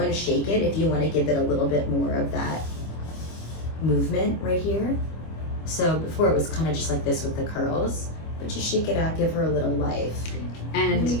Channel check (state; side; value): late; right; 25 ms